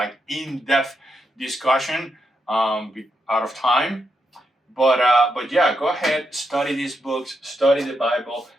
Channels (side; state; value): both; normal; correlation 0.82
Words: in-depth discussion out of time. But yeah, go ahead, study these books, study the Bible.